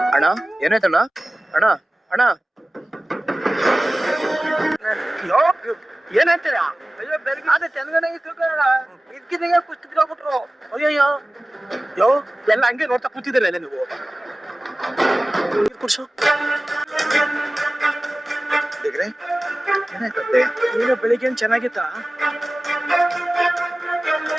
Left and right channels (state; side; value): normal; both; correlation 0.97